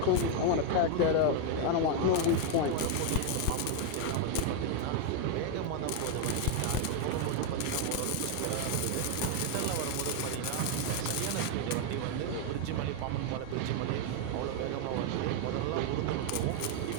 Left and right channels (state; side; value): different; both; correlation 0.01